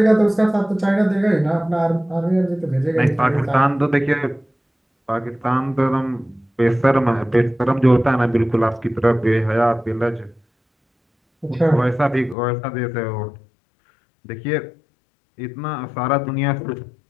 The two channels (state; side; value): drops out; right; at 12.4 s